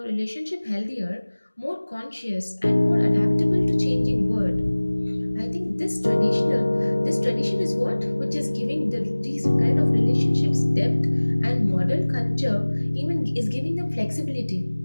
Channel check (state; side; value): inverted; both; correlation -1.00